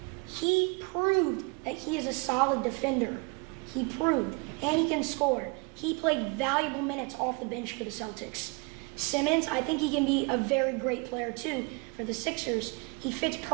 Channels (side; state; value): left; quieter; 30.0 dB